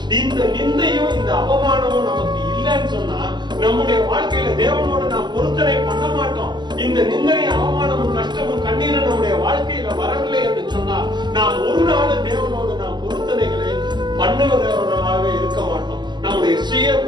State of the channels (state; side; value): late; left; 0.21 ms